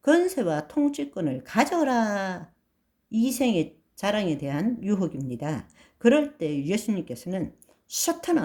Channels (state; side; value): identical; both; correlation 1.00